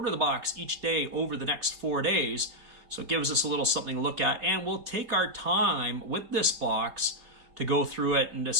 of the box each day over the next 4 days. So it gives us a little something to look at. And we'll take our time with this box to go through it and to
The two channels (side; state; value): left; late; 4.3 ms